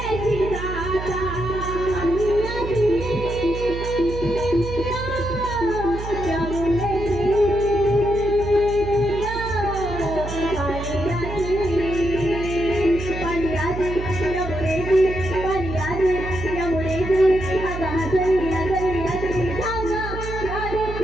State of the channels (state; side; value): noise; right; hum, 7 dB below the sound